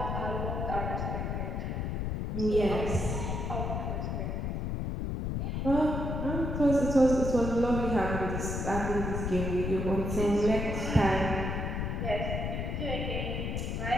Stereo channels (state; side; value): noise; left; rumble, 2 dB below the sound